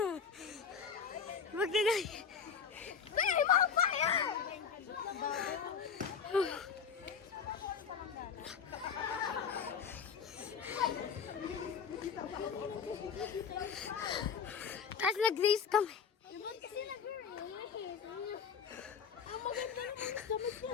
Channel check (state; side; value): quieter; right; 6.6 dB